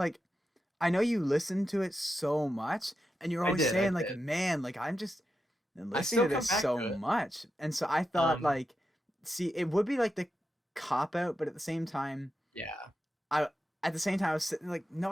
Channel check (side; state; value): both; normal; correlation 0.88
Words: I know you listened to it so much, and you're always I saying like, did. man, like I'm just I listening still to come this back so to it. much, and so I thought Um, like, see, it would be like the cop out, but at the same time, yeah. I at the same time I was sitting like, no,